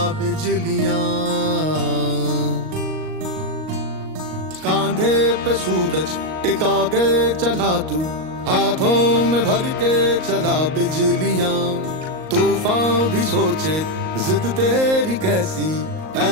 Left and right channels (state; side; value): late; left; 38 ms